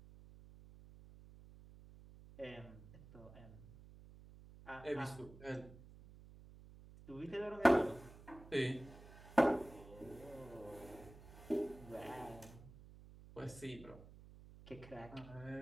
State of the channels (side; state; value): right; noise; hum, 18 dB below the sound